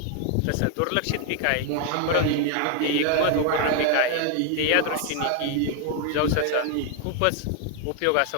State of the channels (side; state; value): both; different; correlation 0.00